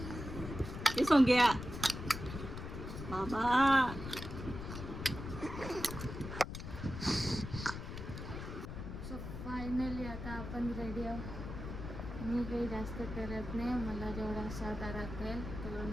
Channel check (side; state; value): left; noise; rumble, 8 dB below the sound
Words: हे सोंग्या बाबा. सो फायनली आता आपण रेडी आहोत. मी काही जास्त करत नाही, मला जेवढा साधा राखेल तेवढं